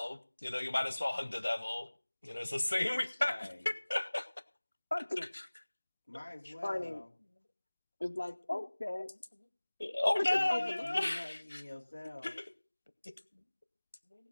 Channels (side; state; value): both; inverted; correlation -1.00